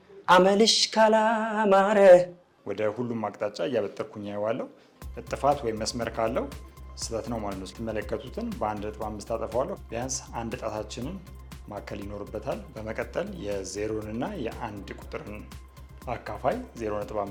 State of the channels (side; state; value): both; identical; correlation 1.00